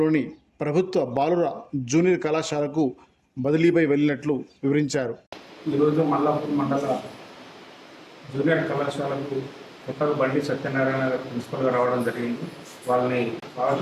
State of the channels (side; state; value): both; identical; correlation 1.00